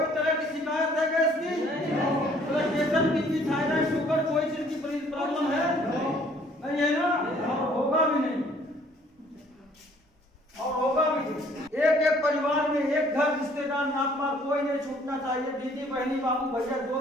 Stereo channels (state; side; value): normal; both; correlation 0.59